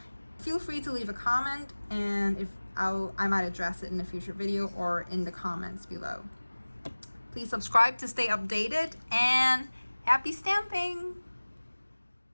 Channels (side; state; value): both; inverted; correlation -1.00